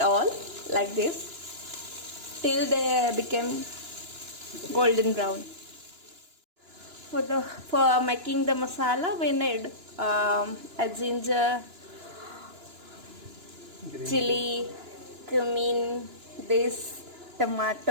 all like this till they become golden brown. For making the masala, we need a ginger, chili, cumin, this,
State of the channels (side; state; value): left; late; 2.9 ms